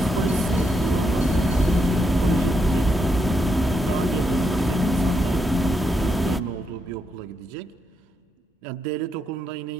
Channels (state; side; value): normal; both; correlation 0.80